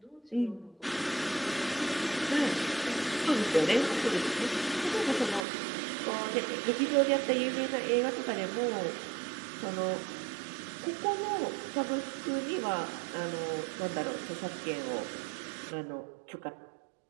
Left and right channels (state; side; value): drops out; left; at 5.5 s